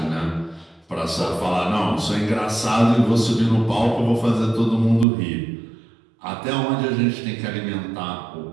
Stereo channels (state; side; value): drops out; left; at 5.1 s